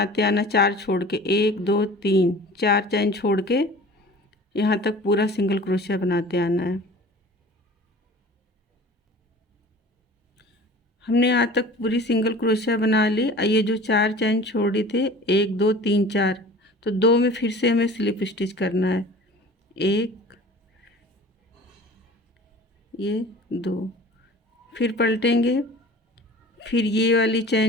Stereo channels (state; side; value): normal; both; correlation 0.42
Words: आना, 4 छोड़ के, 1 2 3 4 चैन छोड़ के यहाँ तक पूरा सिंगल क्रोशिया बनाते आना है। हमने यहाँ तक पूरी सिंगल क्रोशिया बना ली। ये जो 4 चैन छोड़ी थे, 1 2 3 4, तो 2 में फिर से हमें स्लिप स्टिच करना है। 1 ये 2, फिर पलटेंगे। फिर ये वाली